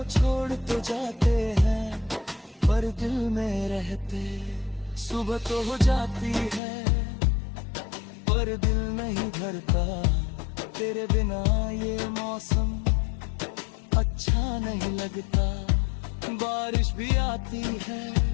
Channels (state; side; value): drops out; right; at 6.6 s